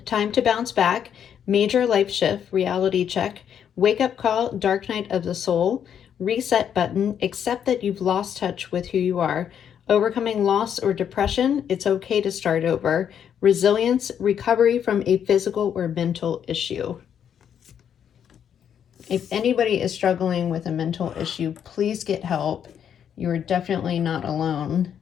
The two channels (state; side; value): quieter; right; 8.7 dB